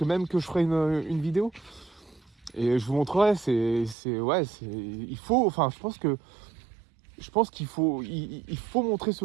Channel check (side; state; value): left; drops out; at 4.0 s